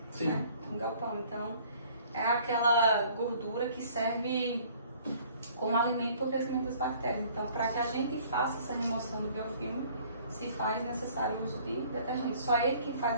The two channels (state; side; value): inverted; both; correlation -0.55